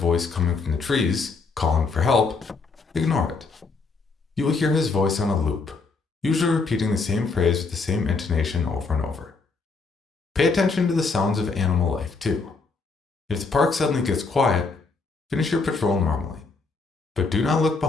coming from the trees, calling for help, ignore it. You will hear his voice on a loop, usually repeating the same phrase with the same intonation over and over. Pay attention to the sounds of animal life too. If the park suddenly gets quiet, finish your patrol normally, but do not look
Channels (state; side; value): quieter; right; 4.2 dB